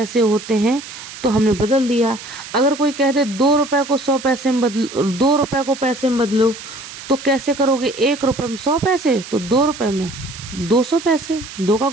होते हैं, तो हमने बदल दिया। अगर कोई कह दे 2 रुपए को 100 पैसे में बदलो, 2 रुपए को पैसे में बदलो, तो कैसे करोगे? 1 रुपए में 100 पैसे, तो 2 रुपए में 200 पैसे, 2 का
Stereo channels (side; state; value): right; noise; hiss, 13 dB below the sound